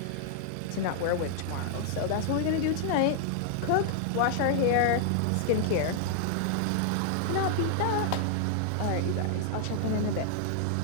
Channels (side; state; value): both; different; correlation -0.01